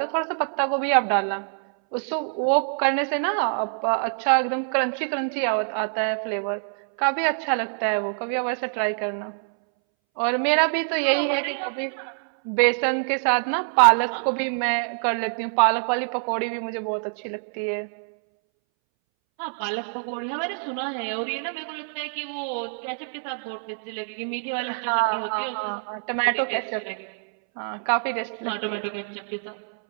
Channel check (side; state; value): left; silent; 62 dB below the other